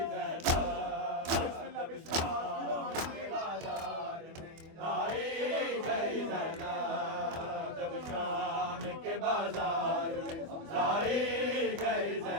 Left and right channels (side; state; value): left; late; 24 ms